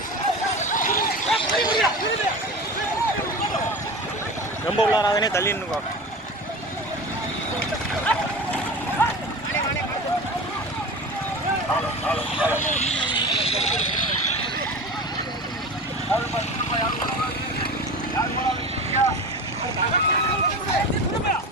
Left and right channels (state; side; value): normal; both; correlation 0.31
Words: ரொம்ப உள்ளாராதனே தள்ளி நின்னுக்கோ